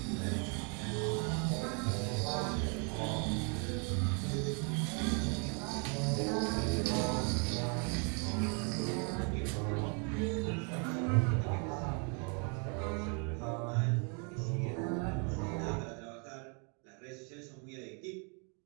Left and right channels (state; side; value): quieter; left; 37.4 dB